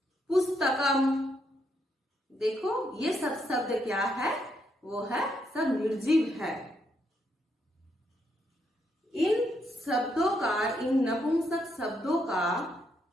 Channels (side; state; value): both; normal; correlation 0.77